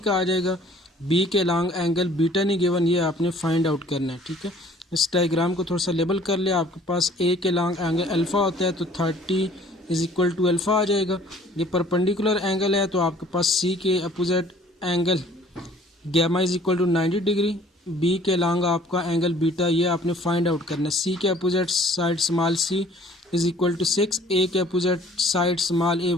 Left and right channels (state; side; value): normal; both; correlation 0.54